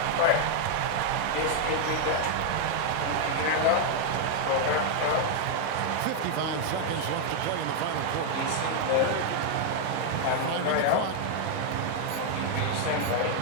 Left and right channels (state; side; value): different; both; correlation 0.00